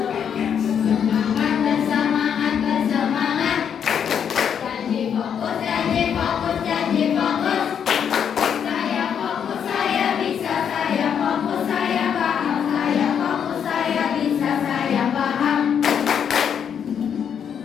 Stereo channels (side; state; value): right; quieter; 8.0 dB